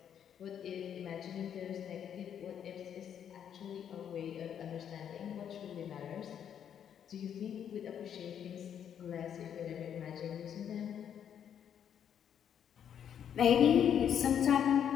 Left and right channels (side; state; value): right; quieter; 8.9 dB